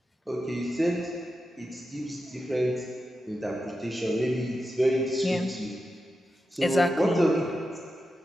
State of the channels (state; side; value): normal; both; correlation 0.90